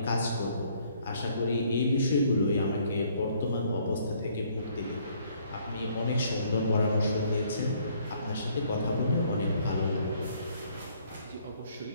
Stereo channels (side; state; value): both; inverted; correlation -0.64